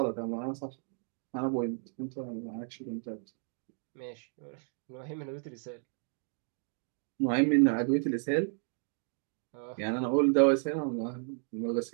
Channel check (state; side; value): silent; left; 56 dB below the other